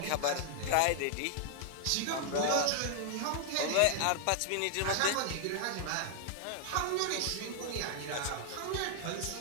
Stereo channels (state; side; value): different; both; correlation 0.00